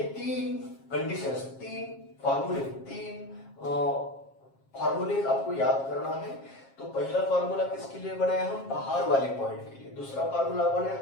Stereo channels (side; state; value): right; late; 7.4 ms